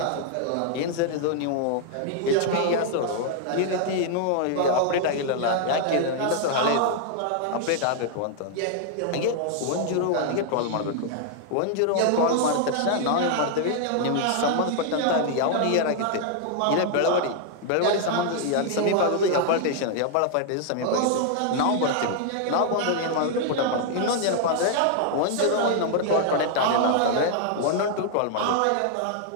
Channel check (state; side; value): different; both; correlation 0.00